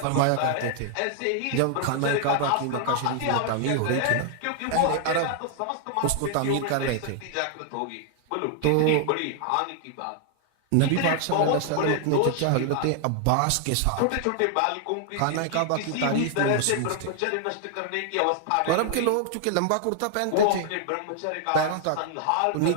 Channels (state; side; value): different; both; correlation 0.00